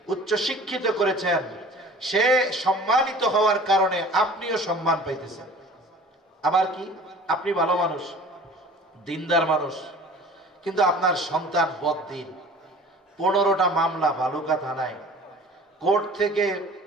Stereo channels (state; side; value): normal; both; correlation 0.45